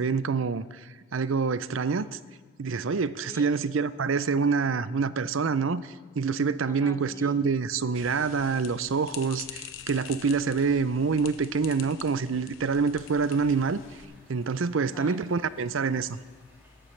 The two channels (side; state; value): left; quieter; 4.6 dB